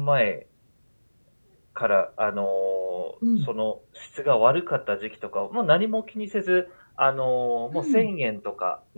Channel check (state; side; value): inverted; both; correlation -1.00